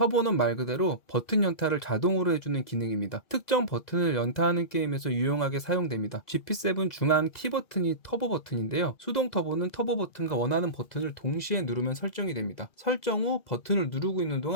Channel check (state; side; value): late; right; 2.0 ms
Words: 말 그대로 버튼 연타를 자동으로 해주는 기능입니다. 특정 버튼을 연타하는 게임에서 유용하게 사용됩니다. GP7 중앙 T 버튼이 터보 버튼인데요. 수동 터보는 터보 버튼과 원하는 버튼을 동시에 누르면 설정이 됩니다. 설정 후 버튼을 누르고 있는